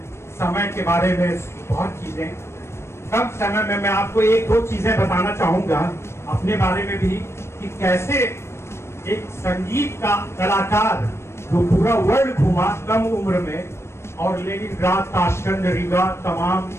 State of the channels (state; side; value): late; right; 0.13 ms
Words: समय के बारे में, बहुत चीजें। कम समय में मैं आपको एक दो चीजें बताना चाहूंगा अपने बारे में भी कि कैसे एक संगीत का कलाकार जो पूरा वर्ल्ड घूमा कम उम्र में और लेनिनग्राड, ताशकंद, रीगा, तमाम